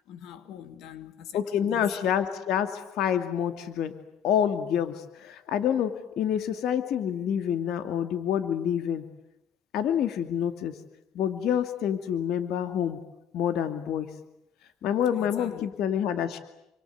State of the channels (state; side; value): quieter; right; 8.8 dB